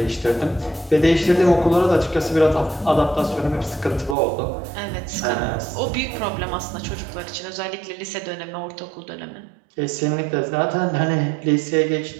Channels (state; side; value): drops out; left; at 4.2 s